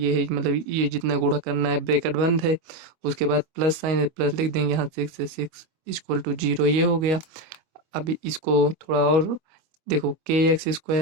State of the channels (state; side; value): late; left; 25 ms